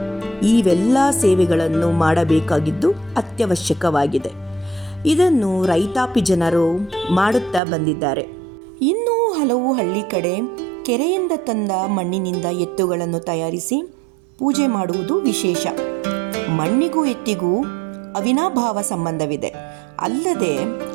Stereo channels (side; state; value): left; drops out; at 7.6 s